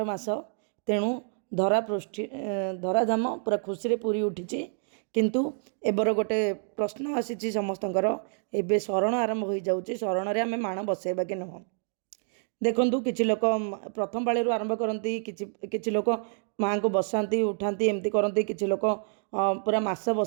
मास। तेणु धरा पृष्ठि धराधाम पूरा खुशी पूरी उठी। किंतु एबर गोटे प्रश्न आसी समस्तଙ୍କର एबे शरण आरंभ हो जाऊँगी। शरण रे आमे माण बसैबा कि नुह। देखु किसी लोक प्रथम पाळी आरंभ करती, किसी लोक माँ को बसाती उठाती एमती करती, किसी लोक पूरा मास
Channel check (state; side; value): silent; left; 59 dB below the other